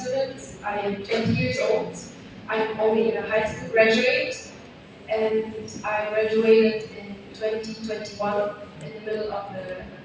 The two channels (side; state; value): both; identical; correlation 1.00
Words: I am 20 years old. I'm only a high school graduate, and I graduated in 2021 in the middle of the